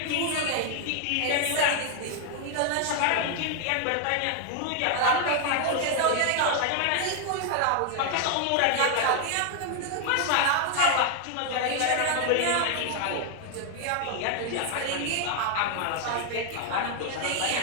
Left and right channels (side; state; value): both; different; correlation 0.00